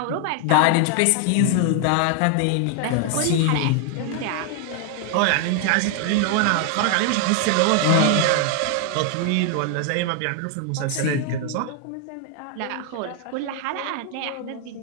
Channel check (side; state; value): both; different; correlation 0.00